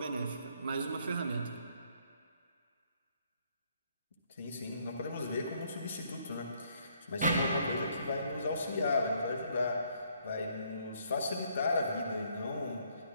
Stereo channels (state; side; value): inverted; both; correlation -0.68